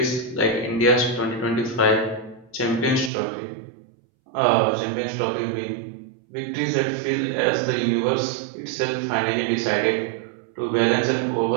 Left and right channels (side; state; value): left; drops out; at 3.1 s